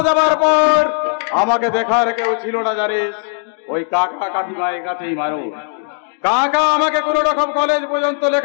যাবার পর আমাকে দেখার কেউ ছিল না জানিস, ওই কাকা কাকিমায়ের কাছেই মারো। কাকা আমাকে কোন রকম কলেজ পর্যন্ত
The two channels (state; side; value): silent; right; 67 dB below the other